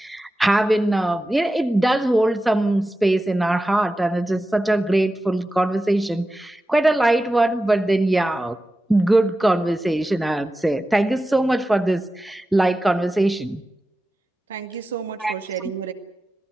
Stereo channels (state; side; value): normal; both; correlation 0.93